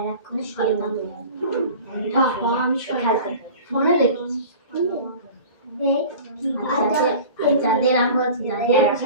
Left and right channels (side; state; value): both; inverted; correlation -0.39